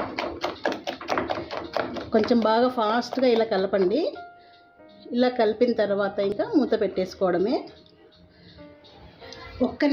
కొంచెం బాగా ఫాస్ట్గా ఇలా కలపండి. ఇలా కలిపిన తర్వాత ఇంకా మూత పెట్టేసుకోవడమే. 1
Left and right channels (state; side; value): identical; both; correlation 1.00